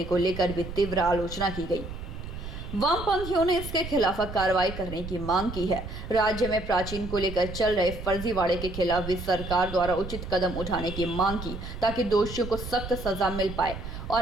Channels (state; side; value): noise; right; rumble, 9 dB below the sound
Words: को लेकर भी तीव्र आलोचना की गई। वामपंथियों ने इसके खिलाफ कार्रवाई करने की मांग की है। राज्य में प्राचीन को लेकर चल रहे फर्जीवाड़े के खिलाफ भी सरकार द्वारा उचित कदम उठाने की मांग की, ताकि दोषियों को सख्त सजा मिल पाए